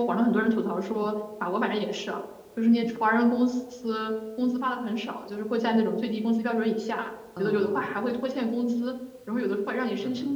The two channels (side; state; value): both; identical; correlation 1.00